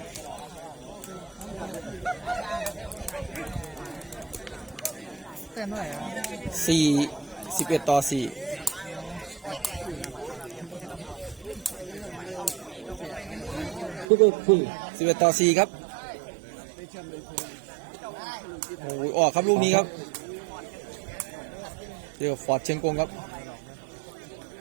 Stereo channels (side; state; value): left; drops out; at 14.1 s